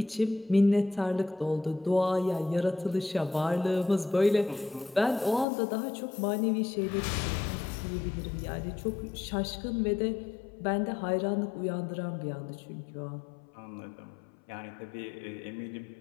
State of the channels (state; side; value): drops out; right; at 5.5 s